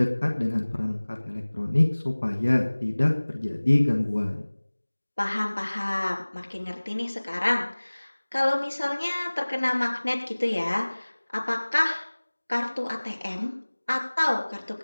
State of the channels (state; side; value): inverted; both; correlation -1.00